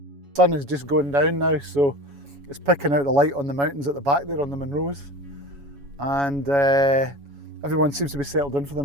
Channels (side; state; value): left; late; 7.1 ms